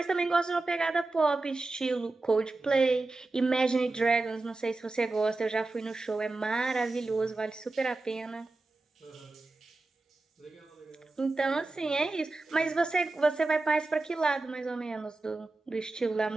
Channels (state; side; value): quieter; left; 3.3 dB